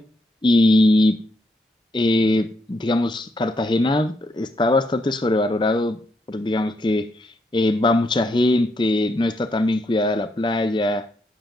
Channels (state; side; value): normal; both; correlation 0.78